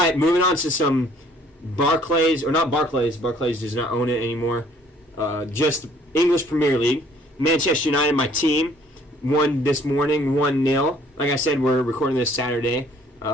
moving on to some Barclays, or not Barclays. Barclays does not own it anymore. Just English Premier League. Manchester United, my team, won this morning 1-0. Like I said, we're recording this Saturday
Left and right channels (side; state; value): both; normal; correlation 0.59